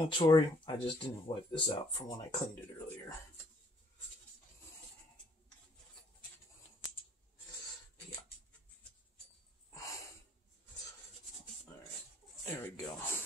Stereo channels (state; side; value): normal; both; correlation 0.63